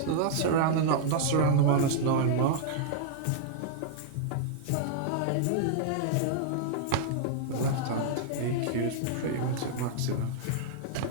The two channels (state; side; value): different; both; correlation -0.01